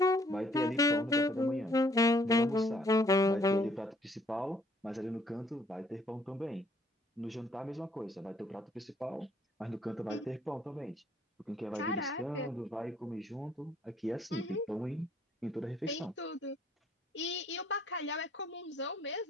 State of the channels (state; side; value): normal; both; correlation 0.64